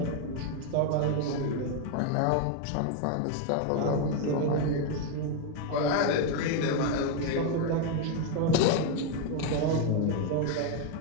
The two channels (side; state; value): both; different; correlation 0.01